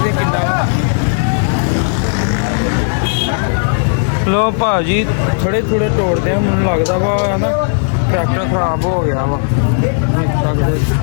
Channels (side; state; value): right; silent; 67 dB below the other